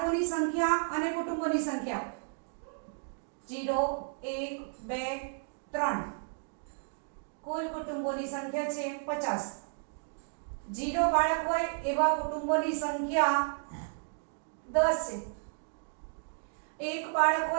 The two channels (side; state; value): left; silent; digital silence